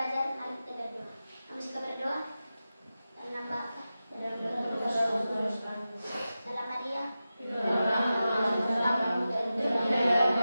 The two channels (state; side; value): inverted; both; correlation -0.93